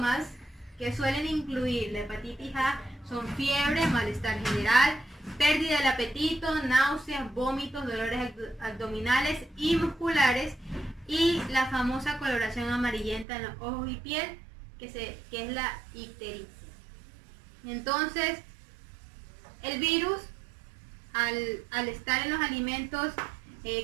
que suelen incluir la hepatitis A son fiebre, malestar general, pérdida del apetito, náuseas, vómitos, dolores abdominales y musculares y la famosa coloración amarillenta en los ojos y piel, que es la ictericia. Entonces, el virus, al estar en los alimentos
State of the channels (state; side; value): drops out; left; at 13.2 s